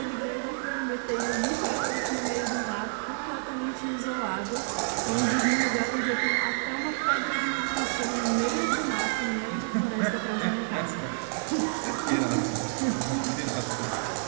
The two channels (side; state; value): left; silent; digital silence